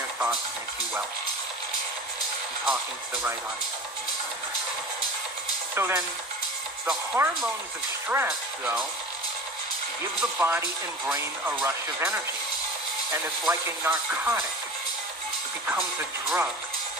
thoughts make you well? I'm talking to the right audience. So then, the hormones of stress, though, give the body and brain a rush of energy. And it's like a narcotic. It becomes a drug.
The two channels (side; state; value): both; normal; correlation 0.35